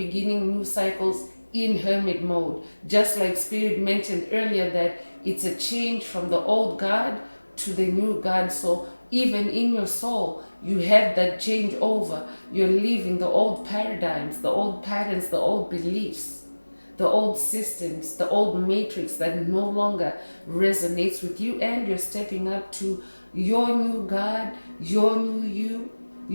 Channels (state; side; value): inverted; both; correlation -1.00